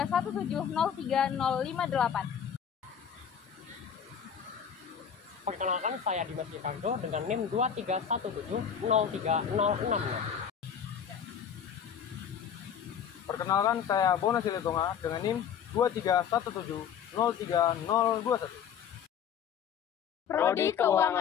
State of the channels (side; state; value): right; quieter; 8.1 dB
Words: Perkenalkan, saya Dimas Ricardo dengan NIM 231703066. Perkenalkan, saya Bona Siletonga dengan NIM 231703021. Prodi